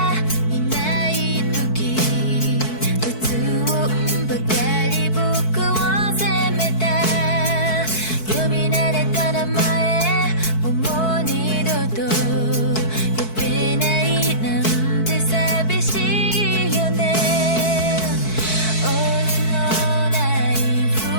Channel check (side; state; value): right; late; 4.6 ms